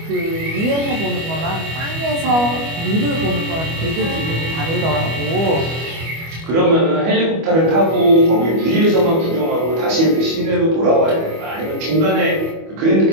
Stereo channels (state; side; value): late; left; 25 ms